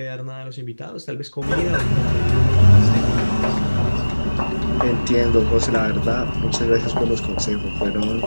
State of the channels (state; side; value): inverted; both; correlation -1.00